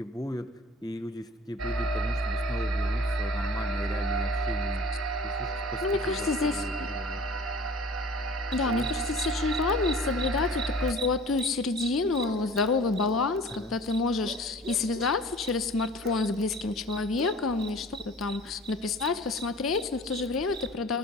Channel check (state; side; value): normal; both; correlation 0.45